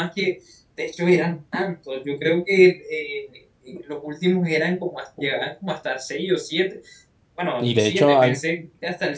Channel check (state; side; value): identical; both; correlation 1.00